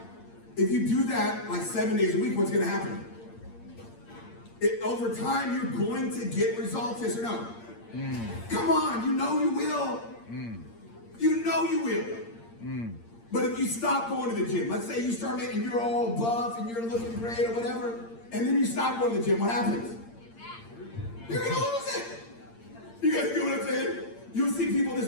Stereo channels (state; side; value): late; right; 8.7 ms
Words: If you do that like 7 days a week, what's going to happen? Over time, you're going to get results, yes or no? Come on, you know you will. You know you will. But if you stop going to the gym, let's say you start making, you're all buff and you're looking great or whatever, and then you stop going to the gym, what happens? You're going to lose it. You guys get what I'm saying? You'll see people in this